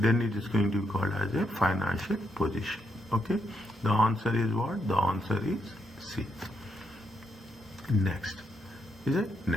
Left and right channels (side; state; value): both; normal; correlation 0.79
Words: it is going to be called as a financial position. Okay. The answer is what? The answer is C. Next. Is it?